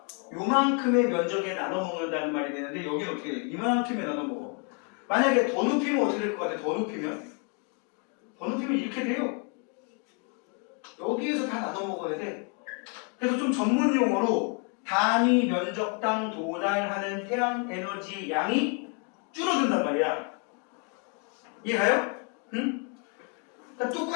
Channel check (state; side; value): quieter; right; 38.0 dB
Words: 요만큼의 면적에 나눠 먹는다는 말이 되는데 여기는 어떻게 돼? 이만큼에 나눠 먹어. 만약에 더 높이면 어떻게 될 것 같아? 더 높이면 이렇게 돼요. 여기에서 다 나눠 먹어야 돼. 그래서 좀 전문 용어로 단위 면적당 도달하는 태양 에너지 양이 줄어든단 말이야. 이해가요? 응? 그러니까